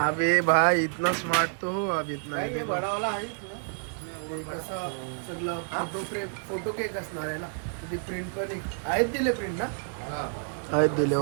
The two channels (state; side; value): silent; left; digital silence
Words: भाई इतना स्मार्ट तो हो अब इतना है देखो. कसं सगळं फोटो केक असणार आहे ना. तिथे प्रिंट पण आहेत दिले प्रिंट ना. आहेत दिले.